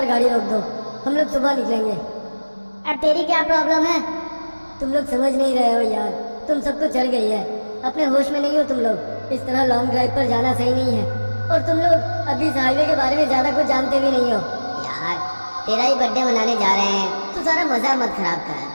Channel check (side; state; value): both; inverted; correlation -1.00